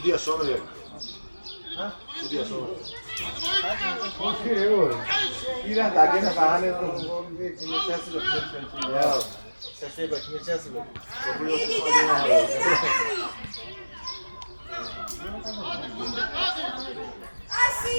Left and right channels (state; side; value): inverted; both; correlation -1.00